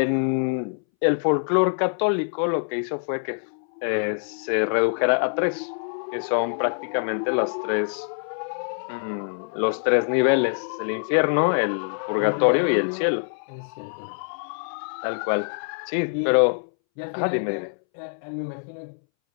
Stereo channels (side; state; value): right; silent; 62 dB below the other